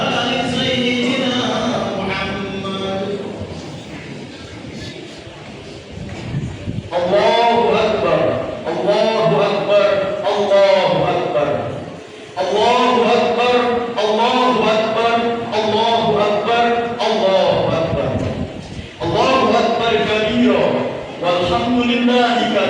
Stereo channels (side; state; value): both; identical; correlation 1.00